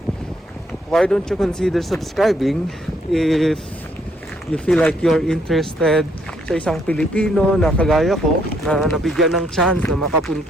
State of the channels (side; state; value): both; normal; correlation 0.70